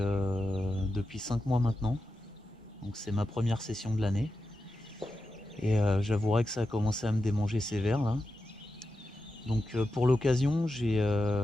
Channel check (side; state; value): both; normal; correlation 0.90